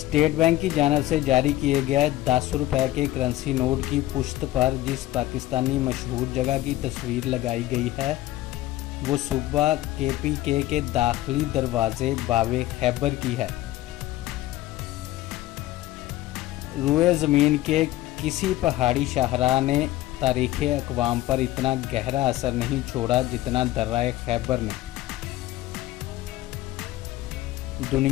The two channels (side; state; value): right; quieter; 15.9 dB